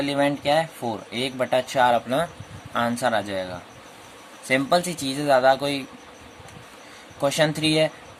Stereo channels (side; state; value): both; identical; correlation 1.00